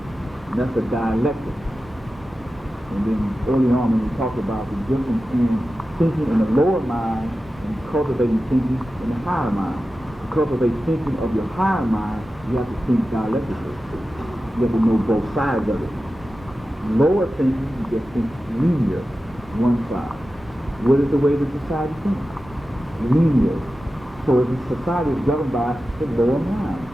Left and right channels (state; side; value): normal; both; correlation 0.93